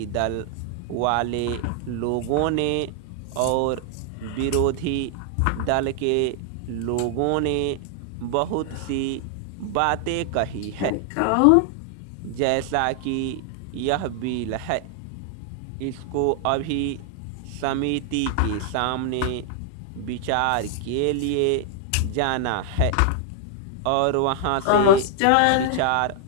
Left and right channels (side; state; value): both; different; correlation 0.00